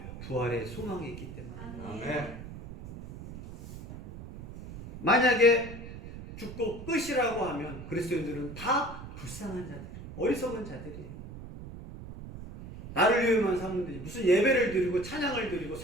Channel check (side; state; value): right; noise; rumble, 12 dB below the sound